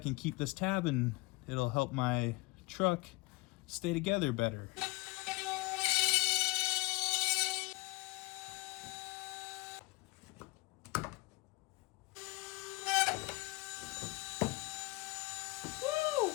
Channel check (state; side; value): quieter; right; 22.9 dB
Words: keep this tab and it'll help my truck stay together better.